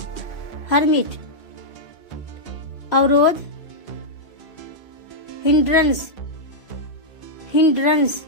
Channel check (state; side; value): late; right; 2.5 ms